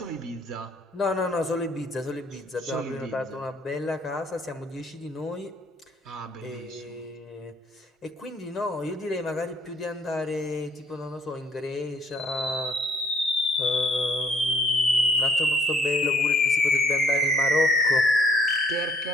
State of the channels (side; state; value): both; normal; correlation 0.62